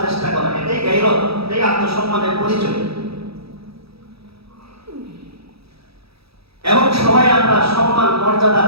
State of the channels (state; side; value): late; left; 0.77 ms